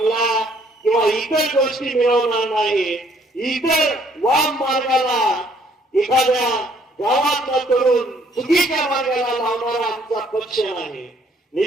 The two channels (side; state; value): both; normal; correlation 0.64